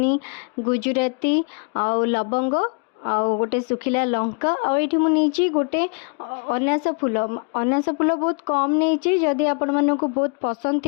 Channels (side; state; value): right; quieter; 37.5 dB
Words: गुजराती आउ लवंग आउ गोटे सुखिला लंका आउ ये मुझे गोटे अनास फूल बहुत कम नहीं जदि आपण मानक बहुत पसंद